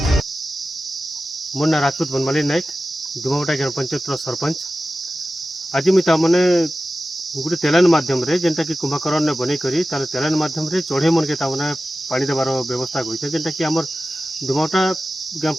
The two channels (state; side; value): normal; both; correlation 0.94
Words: मोर ना राजपूत बनमाली नायक धुमाभट्टा ग्राम पंचायत सरपंच। आज मुझे तामने गोटे तेलान माध्यम रे जेनटा कि कुंभकर्ण ने बनै करी तार तेलान माध्यम रे चढ़ई मन के तामने पानी देबार व्यवस्था करिसे जेनटा कि हमर धुमाभट्टा ग्राम